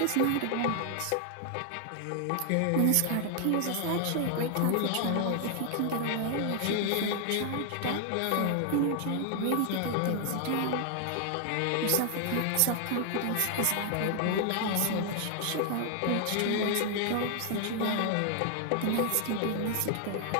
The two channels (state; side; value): different; both; correlation 0.00